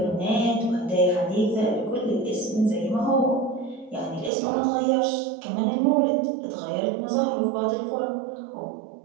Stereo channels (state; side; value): drops out; left; at 4.3 s